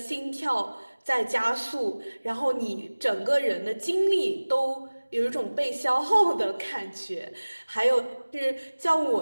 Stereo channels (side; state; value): both; inverted; correlation -1.00